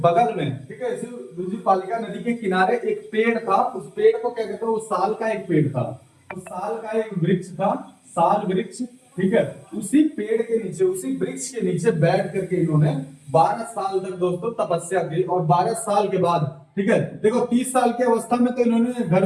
में, ठीक है, इसी रिजुपालिका नदी के किनारे एक पेड़ था, उस पेड़ को क्या कहते हैं, वो साल का एक पेड़ था, उस साल का एक वृक्ष था, साल वृक्ष, ठीक है, उसी पेड़ के नीचे, उसी वृक्ष के नीचे बैठ करके इन्होंने 12 साल तक दोस्तों तपस्या की। और 12 साल के बाद, ठीक है, देखो 30 साल की अवस्था में तो इन्होंने घर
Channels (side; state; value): both; identical; correlation 1.00